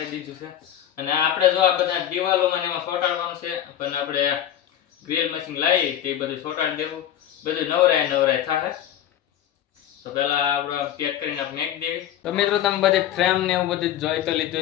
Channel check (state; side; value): quieter; right; 10.9 dB